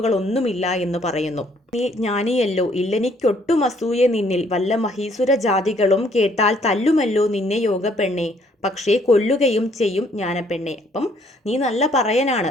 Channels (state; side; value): normal; both; correlation 0.65